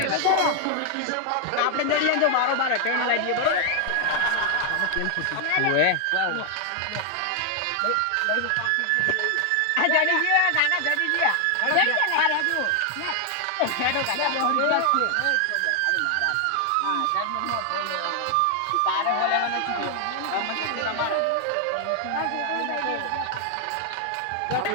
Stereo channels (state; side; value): different; both; correlation 0.00